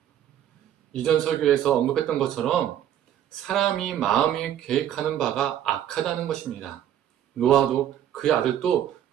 이전 설교에서 언급했던 것처럼 사람이 마음이 계획하는 바가 악하다는 것입니다. 노아도 그의 아들도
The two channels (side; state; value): left; quieter; 10.8 dB